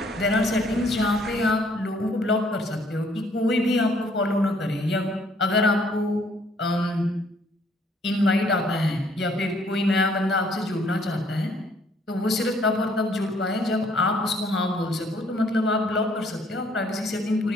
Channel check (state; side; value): normal; both; correlation 0.64